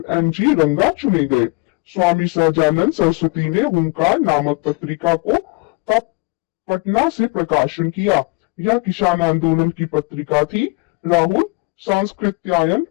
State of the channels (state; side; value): quieter; right; 27.1 dB